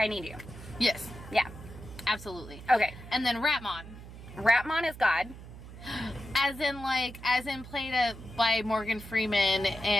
I Need You. Yes. Yeah. Absolutely. Okay. And then Ratmon. Ratmon is God. As in played by Morgan Freeman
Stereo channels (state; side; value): noise; right; hum, 15 dB below the sound